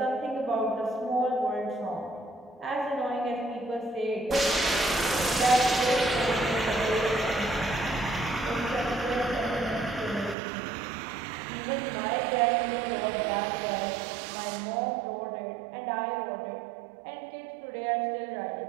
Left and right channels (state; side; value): drops out; left; at 10.4 s